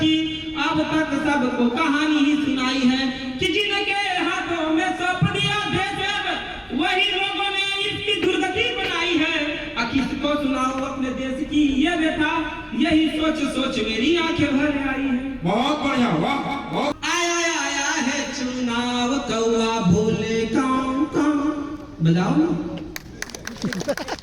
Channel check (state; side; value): identical; both; correlation 1.00